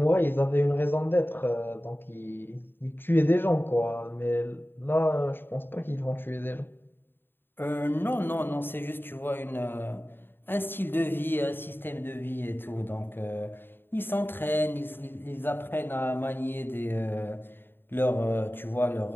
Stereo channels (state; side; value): late; right; 0.10 ms